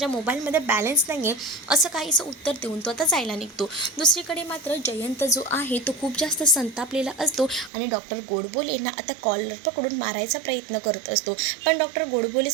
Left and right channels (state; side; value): drops out; left; at 7.7 s